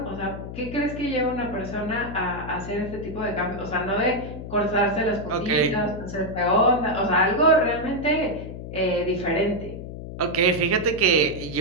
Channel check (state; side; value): noise; left; hum, 10 dB below the sound